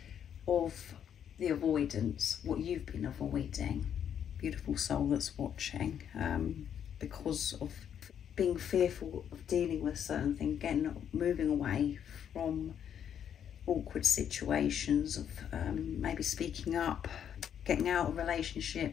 of the avoidance, what you've been avoiding, beautiful soul that's watching, because of being fearful of dealing with certain things, moving away from awkward situations, of maybe speaking up, getting out of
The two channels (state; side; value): quieter; right; 8.9 dB